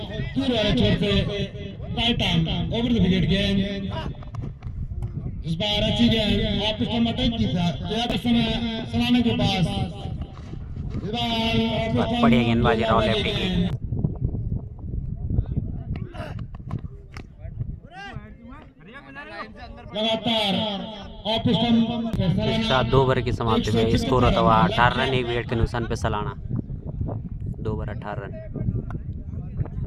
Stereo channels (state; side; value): identical; both; correlation 1.00